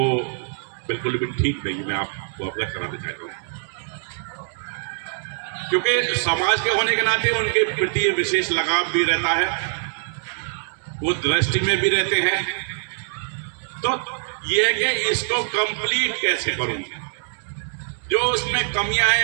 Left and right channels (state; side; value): silent; left; digital silence